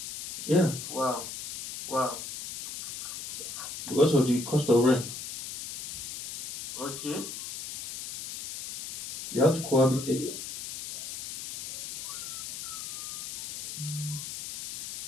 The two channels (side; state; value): left; noise; hiss, 9 dB below the sound